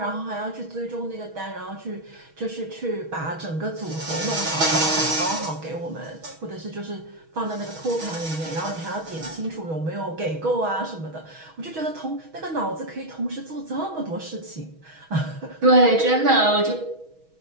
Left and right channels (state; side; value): late; left; 6.2 ms